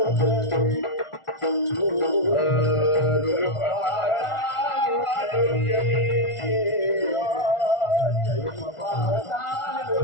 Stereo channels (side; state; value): right; late; 1.4 ms